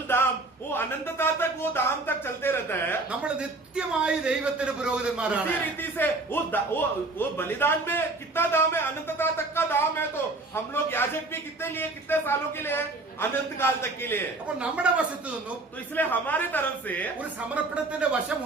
दाम वो अनंतता तक वो दाम तक चलते रहता है। നമ്മൾ നിത്യമായി ദൈവത്തിന് പുരോഹിതന്മാരാണ്. इसी रीति से वो बलिदान में कितना दाम है, अनंतता तक का दाम है। तो हम लोग याजक भी कितने लिए, कितने सालों के लिए है, अनंत काल तक के लिए। അപ്പോൾ നമ്മുടെ വശത്തു നിന്നും तो इसलिए हमारे तरफ से ഒരു സമർപ്പണത്തിന്റെ വശം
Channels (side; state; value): left; quieter; 3.2 dB